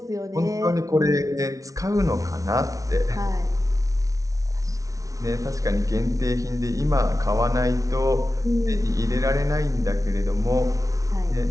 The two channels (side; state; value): left; late; 0.17 ms